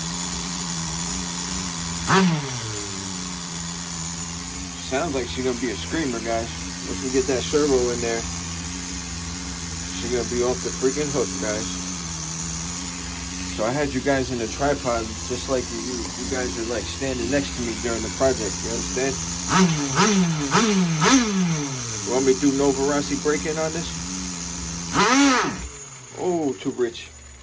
Sounds like she's gonna be a screamer, guys. Once we get that servo in there, she's gonna be off the freaking hook, guys. So I had you guys in the tripod, just like you guys are like standing next to me during the project. You understand? You want me to do Novarasi break-in on this? Oh, too rich.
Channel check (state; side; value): identical; both; correlation 1.00